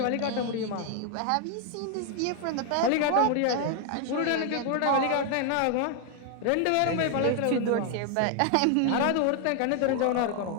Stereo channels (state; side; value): different; both; correlation 0.00